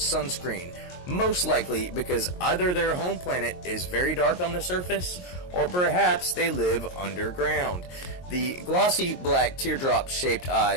most likely because either their home planet is very dark on the surface, or perhaps they live underground. The glossy black teardrop-shaped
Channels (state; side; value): late; right; 22 ms